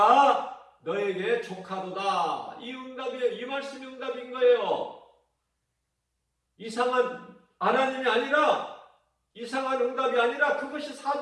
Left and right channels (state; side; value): identical; both; correlation 1.00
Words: 너에게 족하도다. 이 응답이에요. 이 말씀이 응답인 거예요. 이상한 하나님이 아니라, 이상한 응답이 아니라 그것이